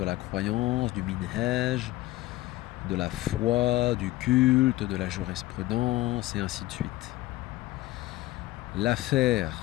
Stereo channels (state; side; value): quieter; right; 17.4 dB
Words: la croyance, du minhaj, de la foi, du culte, de la jurisprudence et ainsi de suite. L'affaire,